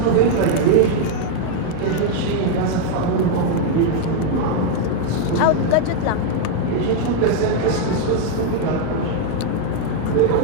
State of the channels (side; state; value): both; different; correlation 0.01